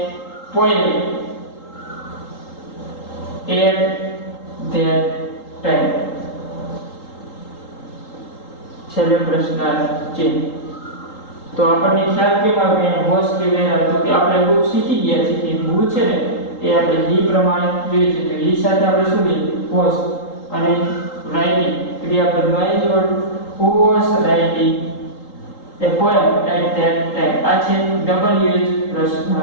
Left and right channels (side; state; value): right; late; 3.8 ms